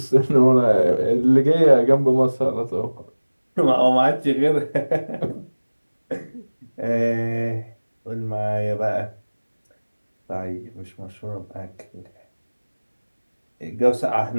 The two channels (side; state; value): both; inverted; correlation -1.00